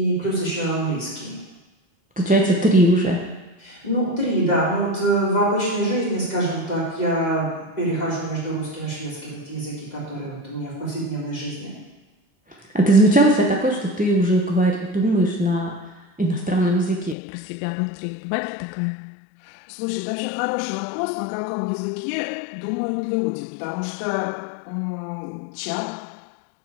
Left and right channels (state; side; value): drops out; right; at 17.2 s